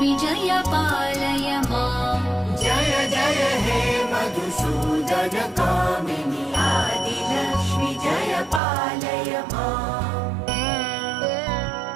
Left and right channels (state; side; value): drops out; left; at 8.6 s